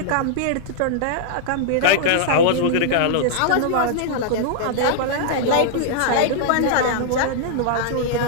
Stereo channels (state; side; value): different; both; correlation -0.01